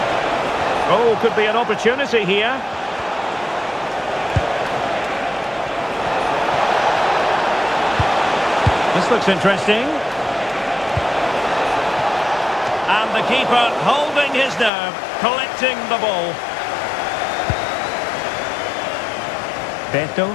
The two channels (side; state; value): right; drops out; at 14.7 s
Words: Oh, could be an opportunity here. This looks interesting. And the keeper holding his nerve, collecting the ball.